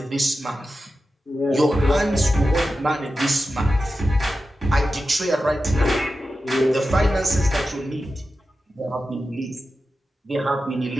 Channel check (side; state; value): both; normal; correlation 0.92